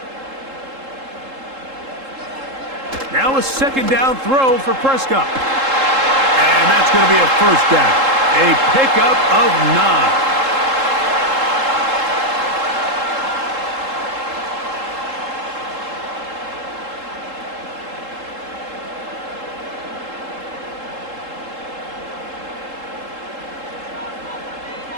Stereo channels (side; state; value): left; late; 3.7 ms